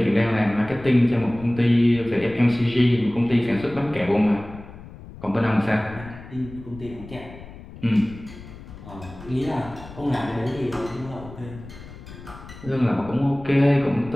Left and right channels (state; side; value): noise; left; rumble, 16 dB below the sound